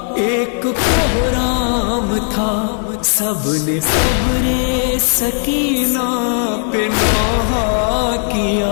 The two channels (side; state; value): right; silent; 56 dB below the other